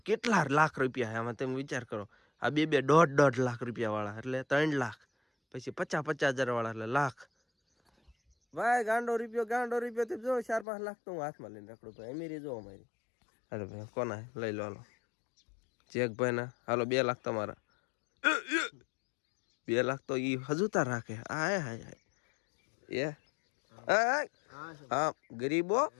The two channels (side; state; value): right; drops out; at 10.7 s